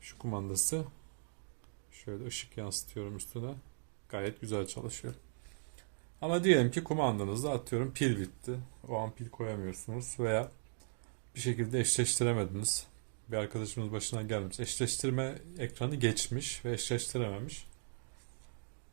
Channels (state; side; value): silent; left; digital silence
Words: şu kumandası, şöyle ışık yansıtıyorum üstüne, gayet güzel çalışıyor. Ama diyelim ki kumandanızda atıyorum pil bitti. O an pil koyamıyorsunuz veya bir şekilde eşleştiremediniz. Bir arkadaşımız başına gelmiş. Eşleştirme ekranı geçmiş ve eşleştirememiş.